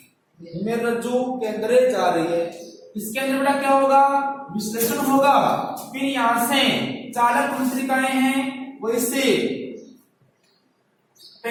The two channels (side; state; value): both; identical; correlation 1.00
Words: मेरुरज्जु के अंदर जा रही है। इसके अंदर बेटा क्या होगा, विश्लेषण होगा। फिर यहां से चालक तंत्रिकाएं हैं वो इससे